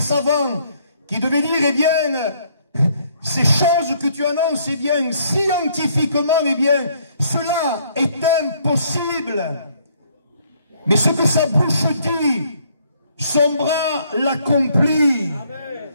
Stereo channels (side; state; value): both; inverted; correlation -0.66